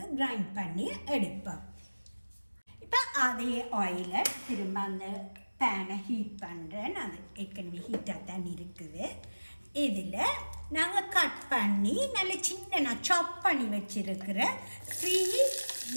கிரைண்ட் பண்ணி எடுப்போம். இப்போ அதே ஆயிலை திரும்ப அந்த பேனை ஹீட் பண்ணுறேன். அது ஏற்கனவே ஹீட்டாக தான் இருக்குது. இதில் நாங்கள் கட் பண்ணி நல்ல சின்ன சாப் பண்ணி வச்சுருக்கிற 3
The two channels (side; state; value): both; inverted; correlation -1.00